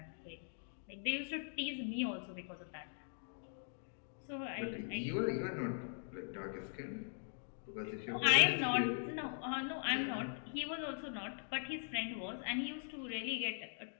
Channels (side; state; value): right; silent; digital silence